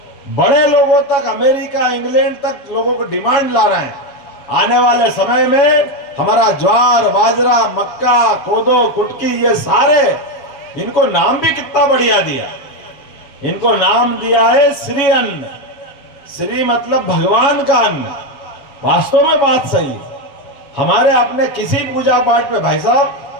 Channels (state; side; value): late; right; 7.2 ms